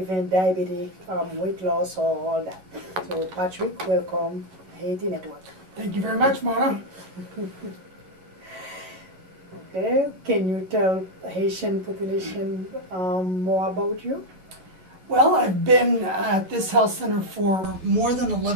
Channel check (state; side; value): late; left; 11 ms